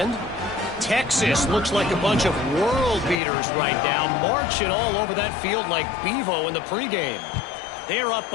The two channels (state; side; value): drops out; right; at 3.2 s